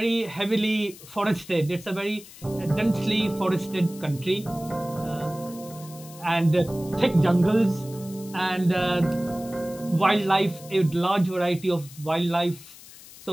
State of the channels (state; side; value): noise; left; hiss, 19 dB below the sound